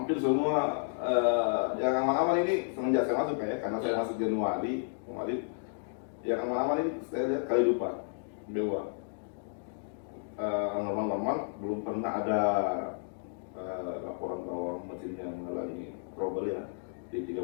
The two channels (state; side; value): silent; right; digital silence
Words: semua yang aman-aman ini semenjak saya masuk ya, karena saya masuk Januari kemarin, yang aman-aman ini saya lihat kali lupa Dewa. Normal-normal belum pernah ada laporan bahwa mesinnya mengalami trouble ya di